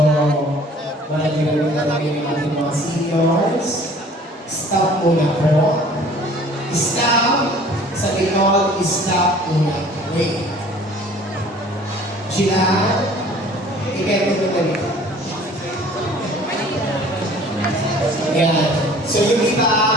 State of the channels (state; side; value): normal; both; correlation 0.50